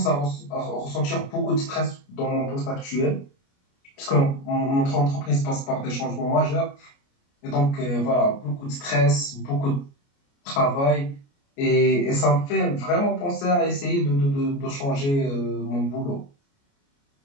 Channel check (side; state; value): right; late; 29 ms